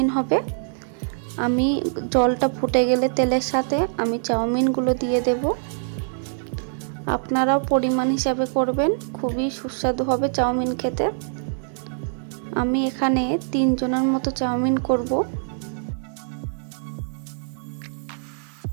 হবে। আমি জলটা ফুটে গেলে তেলের সাথে আমি চাউমিনগুলো দিয়ে দেব। আপনারাও পরিমাণ হিসাবে করবেন, খুবই সুস্বাদু হবে চাউমিন খেতে। আমি এখানে 3 জনের মতো চাউমিন করব।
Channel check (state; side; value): silent; left; digital silence